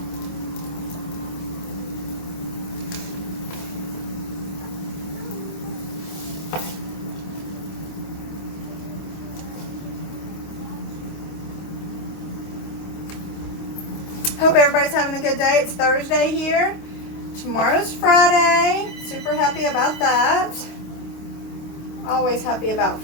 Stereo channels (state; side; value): late; right; 25 ms